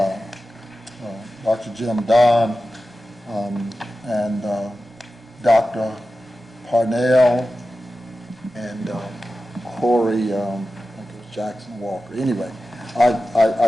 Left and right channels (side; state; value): both; normal; correlation 0.93